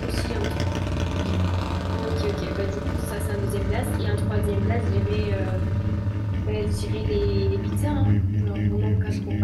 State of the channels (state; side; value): identical; both; correlation 1.00